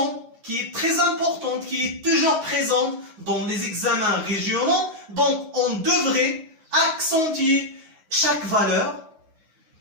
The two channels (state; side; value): late; left; 9.5 ms